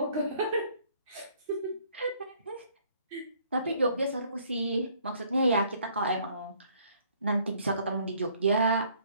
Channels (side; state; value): both; inverted; correlation -0.61